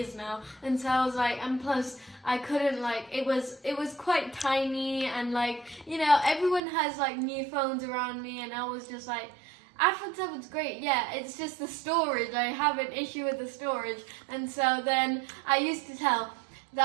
now, and so I was like, and plus I couldn't, like, it was quite tiny, and like, you know, everyone has like new phones around me, and I was just like, iPhone 7's great, yeah, it's just the storage, I have an issue with the storage. And so then I used to tell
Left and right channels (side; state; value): left; drops out; at 6.6 s